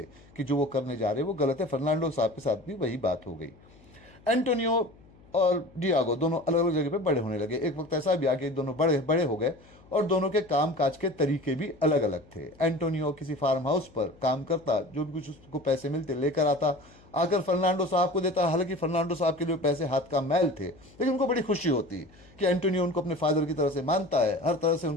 कि जो वो करने जा रहे हैं वो गलत है। फर्नांडो साहब के साथ भी वही बात हो गई। एंटोनियो और डियागो दोनों अलग अलग जगह पे बड़े होने लगे। एक वक्त ऐसा भी आ कि दोनों बड़े बड़े हो गए और दोनों के काम काज के तरीके भी अलग अलग थे। एंटोनियो किसी फार्म हाउस पर काम करता, जो भी कुछ उसको पैसे मिलते लेकर आता, आकर फर्नांडो साहब को देता। हालांकि फर्नांडो साहब के लिए पैसे हाथ का मैल थे, लेकिन उनको बड़ी खुशी होती कि एंटोनियो उनको अपने फादर की तरह से मानता है, हर तरह से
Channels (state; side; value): noise; left; hum, 26 dB below the sound